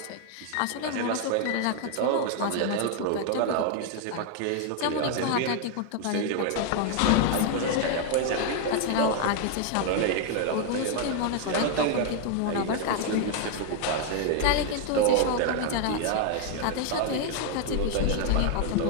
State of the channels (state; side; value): different; both; correlation 0.00